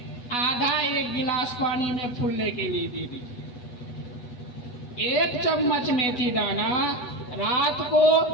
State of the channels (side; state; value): right; late; 8.1 ms